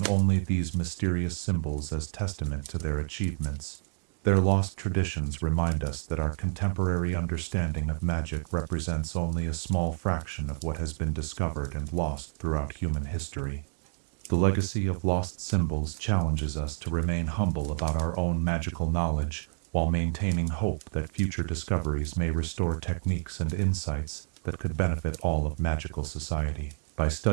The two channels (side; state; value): left; silent; digital silence